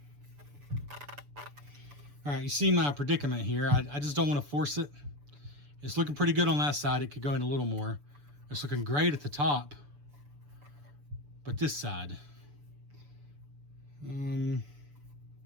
All right, you see my predicament here. I just don't want to force it. It's looking pretty good on that side. It could go in a little more. It's looking great at the top. But this side.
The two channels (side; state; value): left; late; 6.9 ms